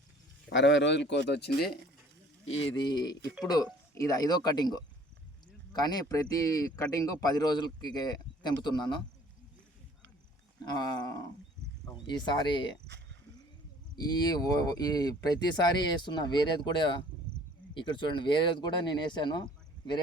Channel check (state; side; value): normal; both; correlation 0.53